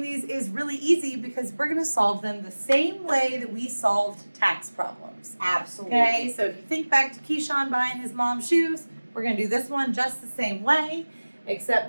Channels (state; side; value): inverted; both; correlation -1.00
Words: these is really easy because we're going to solve them the same way that we solved tax problems. Absolutely. Okay, so if you think back to Keyshawn buying his mom's shoes, we're going to do this one just the same way, except